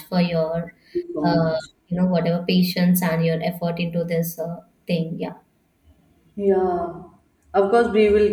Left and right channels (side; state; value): both; identical; correlation 1.00